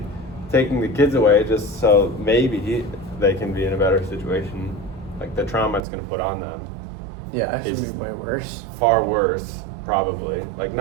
taking the kids away just so maybe they can be in a better situation, like the trauma it's going to put on them yeah, it should is be way worse. far worse, probably. Like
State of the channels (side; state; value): left; drops out; at 5.9 s